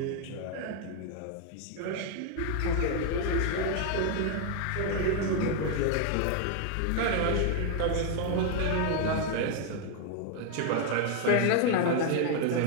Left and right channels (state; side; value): different; both; correlation 0.01